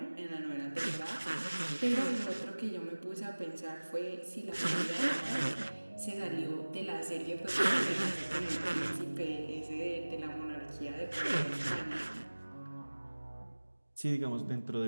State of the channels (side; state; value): both; inverted; correlation -1.00